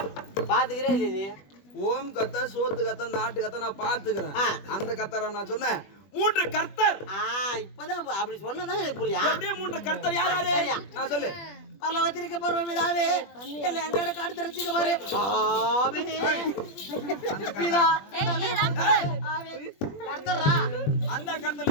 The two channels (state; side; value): late; right; 20 ms